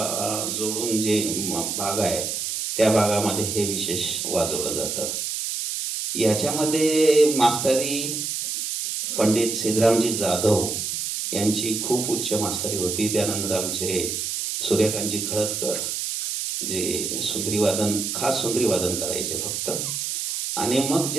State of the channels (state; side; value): noise; right; hiss, 3 dB below the sound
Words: जोडून जे भाग आहे त्या भागामध्ये हे विशेष वाजवलं जातं. याच्यामध्ये मास्तरी पंडित सिद्धरामजी जाधव यांची खूप उच्च मास्तरी होती. त्यानंतर आमचे सूर्यकांतजी खळदकर जे सुंदरी वादन, खास सुंदरी वादन करायचे फक्त. आणि मग